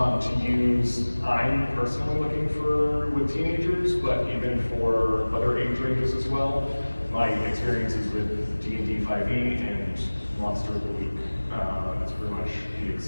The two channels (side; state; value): both; inverted; correlation -1.00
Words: use? I'm personally looking for with teenagers, but even for other age ranges as well. My experiences with D&D 5e and Monster of the Week. That's pretty much the